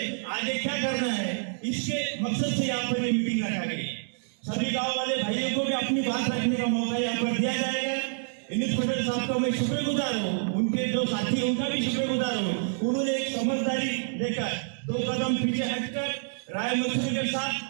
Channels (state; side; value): silent; left; digital silence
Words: आगे क्या करना है, इसके मकसद से यहाँ पर ये मीटिंग रखा गई। सभी गांव वाले भाइयों को भी अपनी बात रखने का मौका यहाँ पर दिया जाएगा। यूनुस पटेल साहब का मैं शुक्रगुजार हूँ, उनके जो साथी उनका भी शुक्रगुजार हूँ। उन्होंने एक समझदारी लेकर 2 कदम पीछे हटकर राय मशवरे के साथ